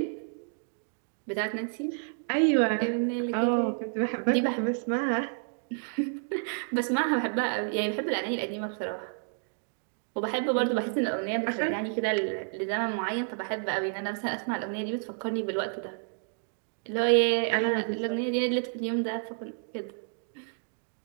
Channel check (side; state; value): left; silent; 58 dB below the other